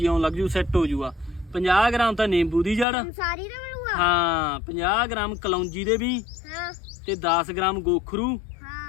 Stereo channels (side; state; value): right; drops out; at 2.9 s